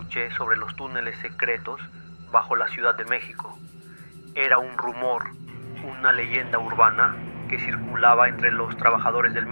sobre los túneles secretos bajo la Ciudad de México. Era un rumor, una leyenda urbana que circulaba entre los trabajadores del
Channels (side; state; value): both; inverted; correlation -1.00